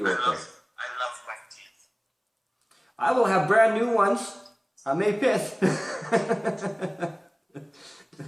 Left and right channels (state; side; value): identical; both; correlation 1.00